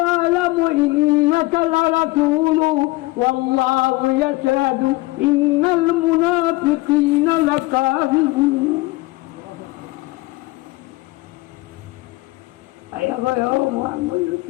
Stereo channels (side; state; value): right; quieter; 21.5 dB